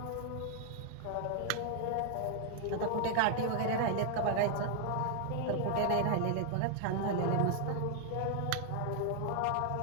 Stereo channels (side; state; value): both; different; correlation 0.00